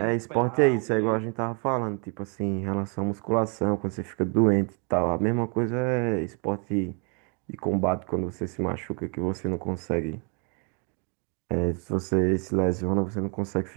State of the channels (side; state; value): left; quieter; 36.8 dB